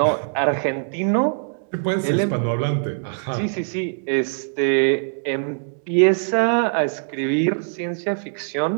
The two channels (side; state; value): left; silent; digital silence